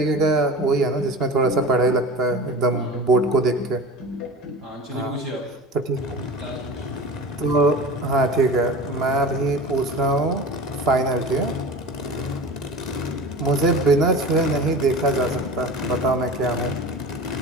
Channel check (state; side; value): normal; both; correlation 0.34